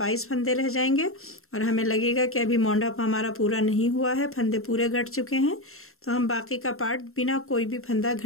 फंदे रह जाएंगे और हमें लगेगा कि अभी मोंढा हमारा पूरा नहीं हुआ है, फंदे पूरे घट चुके हैं, तो हम बाकी का पार्ट बिना कोई भी फंदा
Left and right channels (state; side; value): late; right; 0.62 ms